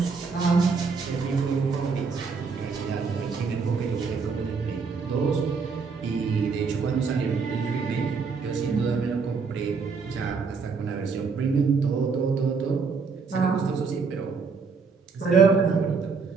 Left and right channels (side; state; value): left; quieter; 5.1 dB